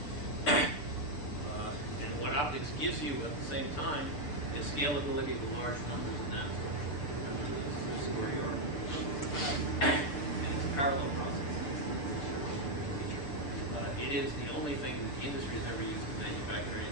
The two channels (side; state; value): right; late; 6.7 ms